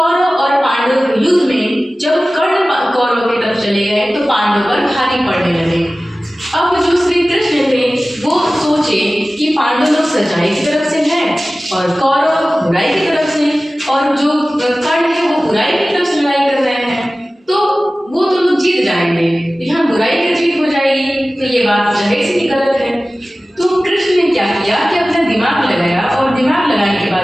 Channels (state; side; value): normal; both; correlation 0.97